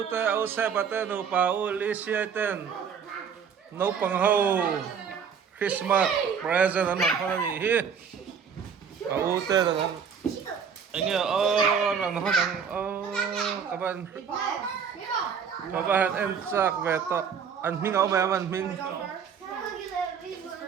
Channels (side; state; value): left; quieter; 6.9 dB